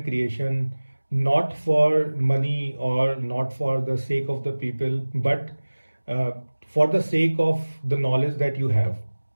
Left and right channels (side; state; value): both; inverted; correlation -1.00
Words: creation, not for money or not for the sake of the people, but uh, for the sake of the knowledge that you have.